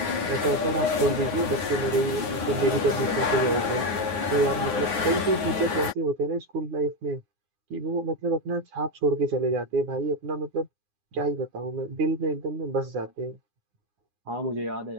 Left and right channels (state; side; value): late; left; 9.6 ms